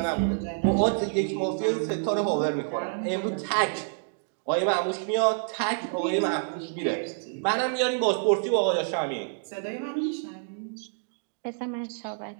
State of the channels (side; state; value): left; silent; digital silence